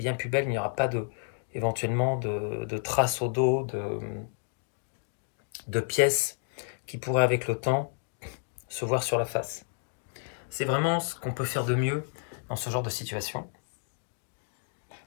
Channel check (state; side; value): silent; right; 57 dB below the other